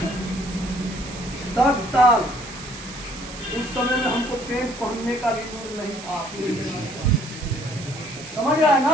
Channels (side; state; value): right; noise; hiss, 13 dB below the sound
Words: 10 साल। उस समय में हमको पेंट पहनने का भी दूर नहीं था। समझ रहा है